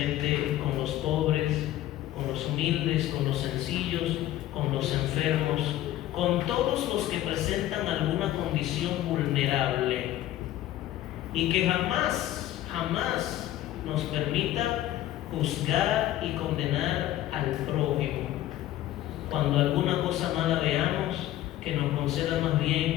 con los pobres, con los humildes, con los sencillos, con los enfermos, con todos los que presentan alguna condición vulnerable, y que jamás nos permita juzgar y condenar al prójimo. Cuando alguna cosa mala veamos, que nos conceda más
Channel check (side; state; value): right; quieter; 13.8 dB